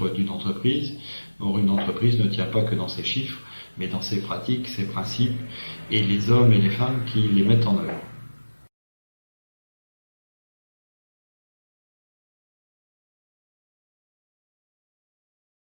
d'une entreprise. Or, une entreprise ne tient pas que dans ses chiffres, mais dans ses pratiques, ses principes, et les hommes et les femmes qui les mettent en œuvre.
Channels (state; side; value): inverted; both; correlation -1.00